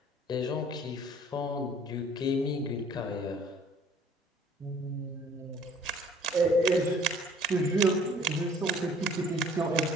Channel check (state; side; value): normal; both; correlation 0.55